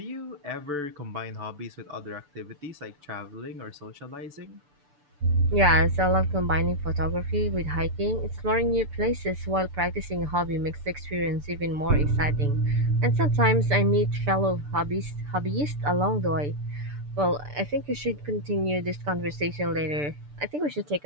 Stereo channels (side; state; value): left; late; 6.8 ms